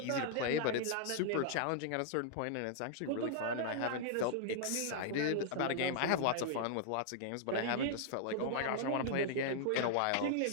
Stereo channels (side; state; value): both; different; correlation -0.01